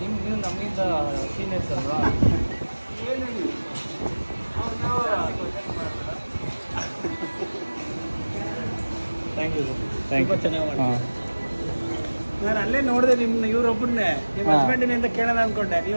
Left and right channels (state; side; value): inverted; both; correlation -1.00